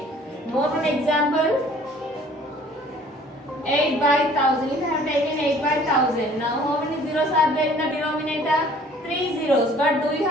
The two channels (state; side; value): normal; both; correlation 0.54